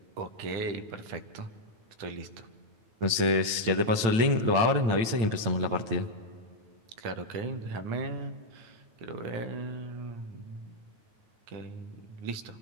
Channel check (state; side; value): late; left; 9.0 ms